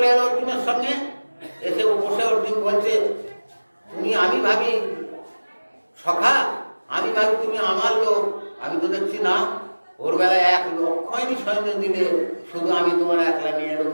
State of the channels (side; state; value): both; inverted; correlation -1.00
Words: এলো অর্জুনের সঙ্গে, এসে বসে অর্জুন বলছে, তুমি, আমি ভাবি সখা, আমি ভাবি তুমি আমার লোক, আমি তো দেখছি না। ওর বেলায় 1,00,000 সৈন্য দিলে, শুধু আমি তোমার একলা নিয়ে এলাম